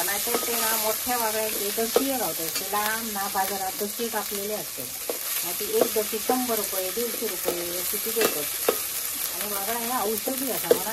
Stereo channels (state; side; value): identical; both; correlation 1.00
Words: नाहीतर ते ना मोठ्या वागळ्याचे दशीये गावतात. ते लांब ना बाजारात दशी कापलेले असतात. मग ती एक दशी 100 रुपये 150 रुपये अशी ती देतात. आणि वागळा ह्या औषधी असा